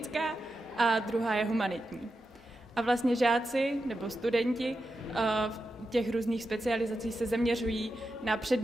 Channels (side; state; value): both; normal; correlation 0.89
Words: a druhá je humanitní. A vlastně žáci nebo studenti v těch různých specializací se zaměřují na